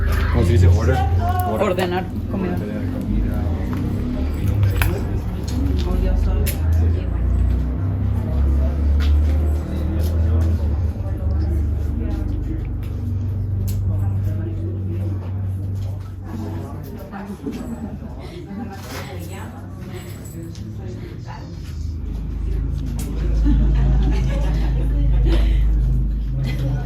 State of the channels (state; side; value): identical; both; correlation 1.00